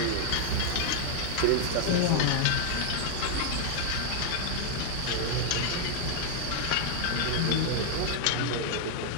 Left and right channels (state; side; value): different; both; correlation 0.00